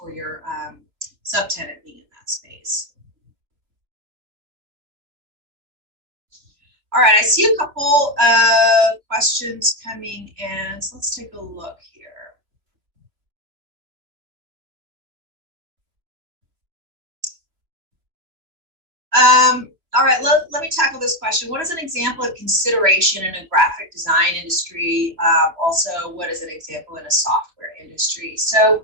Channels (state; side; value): late; left; 2.9 ms